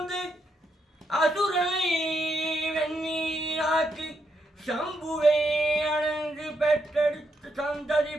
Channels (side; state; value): both; normal; correlation 0.80